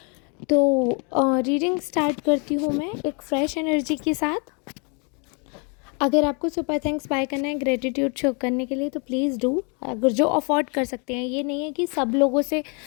तो रीडिंग स्टार्ट करती हूँ मैं एक फ़्रेश एनर्जी के साथ। अगर आपको सुपर थैंक्स बाय करना है ग्रेटिट्यूड शो करने के लिए तो प्लीज़ डू। अगर जो अफोर्ड कर सकते हैं, ये नहीं है कि सब लोगों से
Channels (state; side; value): quieter; right; 35.5 dB